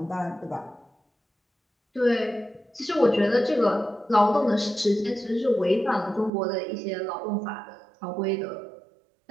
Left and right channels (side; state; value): left; drops out; at 6.3 s